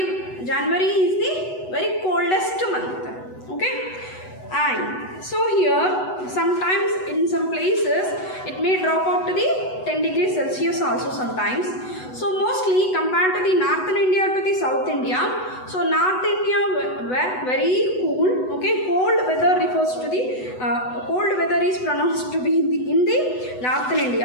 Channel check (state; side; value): late; right; 8.0 ms